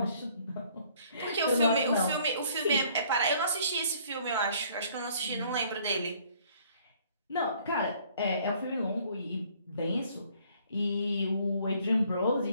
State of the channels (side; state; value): both; inverted; correlation -0.60